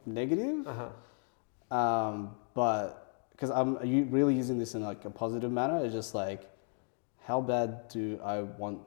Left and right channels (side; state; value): right; silent; 55 dB below the other